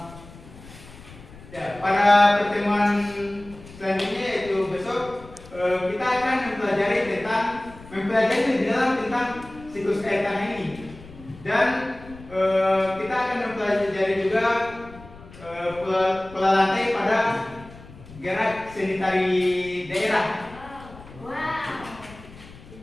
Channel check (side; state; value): left; noise; rumble, 19 dB below the sound